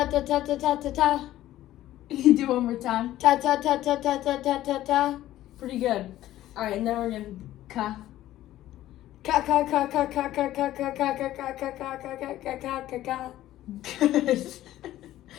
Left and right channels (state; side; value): quieter; right; 14.1 dB